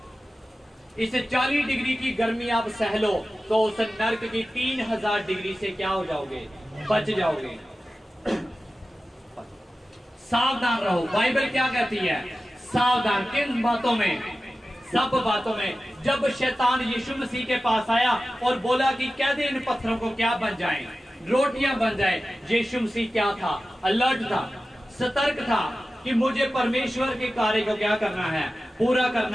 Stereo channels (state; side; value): normal; both; correlation 0.94